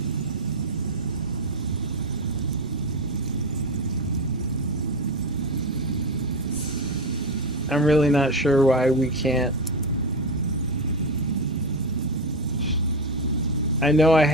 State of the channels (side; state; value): both; normal; correlation 0.16